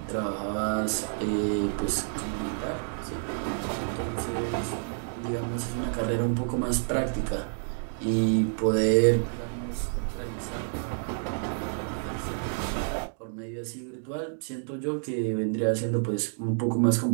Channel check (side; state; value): left; silent; digital silence